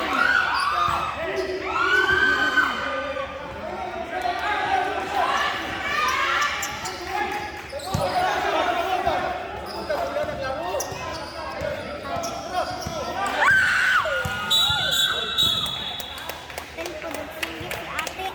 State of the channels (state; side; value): identical; both; correlation 1.00